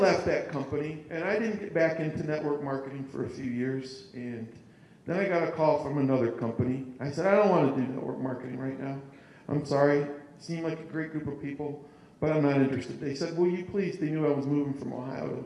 that company, and I didn't get back into network marketing for a few years. And then I got a call from another company. I said, I don't want to do network marketing right now. I'm sorry. It seemed like a great group of people, but I'm not interested. They said, will you please, they knew I was moving from Ohio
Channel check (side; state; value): both; identical; correlation 1.00